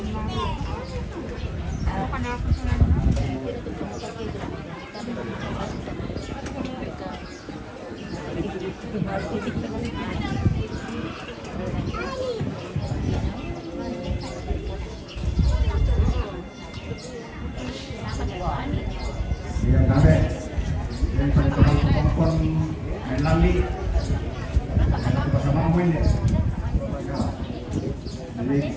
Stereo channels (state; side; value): identical; both; correlation 1.00